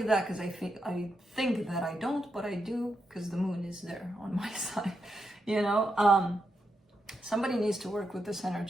that because I think that I don't, but I do, because the Moon is there on my side, you know. Somebody needs to work with this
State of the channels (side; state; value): both; normal; correlation 0.84